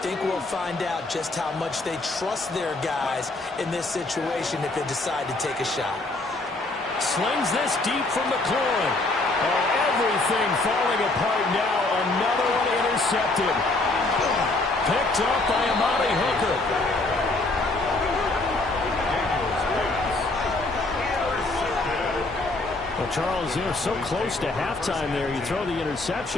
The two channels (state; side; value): quieter; right; 3.0 dB